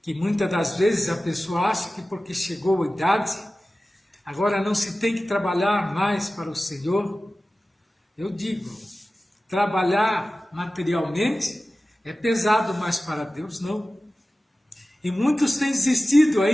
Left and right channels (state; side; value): normal; both; correlation 0.96